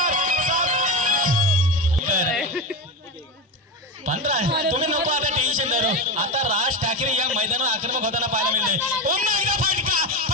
15. तुम्ही नको आता टेन्शन धरू. आता राज ठाकरे या मैदानावर आक्रमक होताना पाहायला मिळते. पुन्हा एकदा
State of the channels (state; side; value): normal; both; correlation 0.17